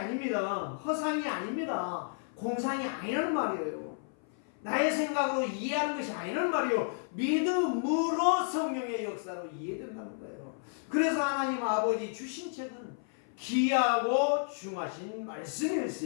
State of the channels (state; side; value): silent; right; 55 dB below the other